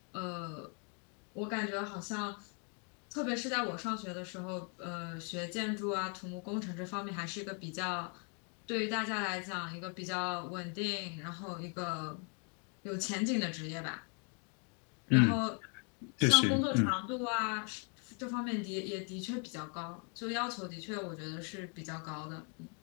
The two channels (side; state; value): right; quieter; 38.6 dB